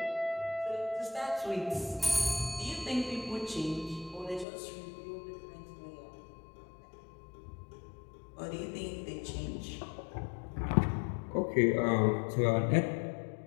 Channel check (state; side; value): drops out; right; at 4.5 s